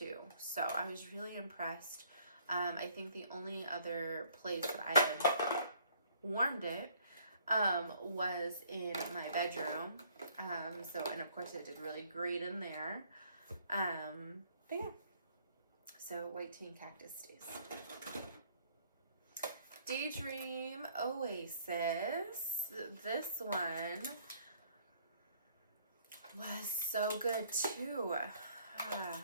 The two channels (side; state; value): both; inverted; correlation -0.61